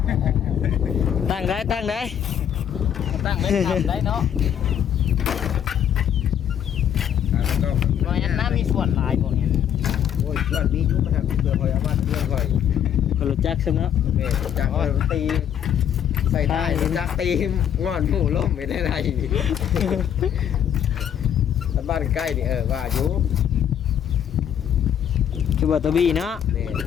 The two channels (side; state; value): right; quieter; 9.4 dB